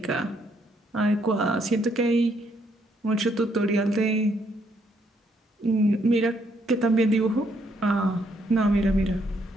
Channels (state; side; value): normal; both; correlation 0.72